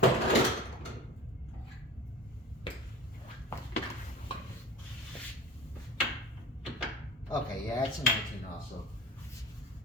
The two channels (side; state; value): both; normal; correlation 0.36